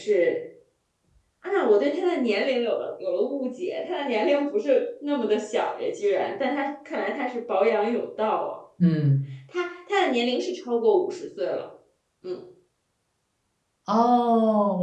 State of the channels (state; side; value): identical; both; correlation 1.00